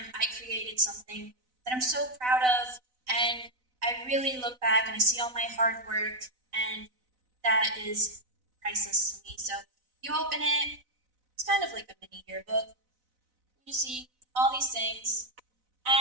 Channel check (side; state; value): left; late; 4.0 ms